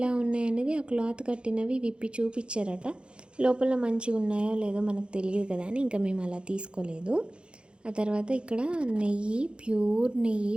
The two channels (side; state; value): left; late; 0.055 ms